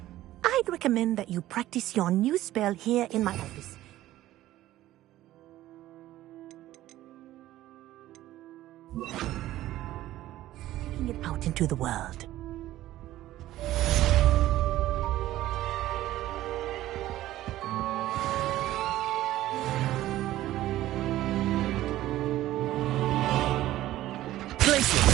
I'd recommend that you practice your new spell here in my office. Taking it out into the world.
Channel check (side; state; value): left; quieter; 14.8 dB